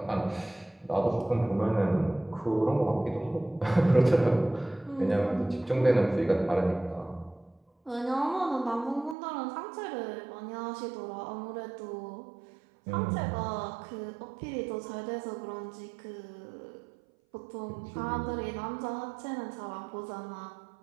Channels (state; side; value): drops out; left; at 9.2 s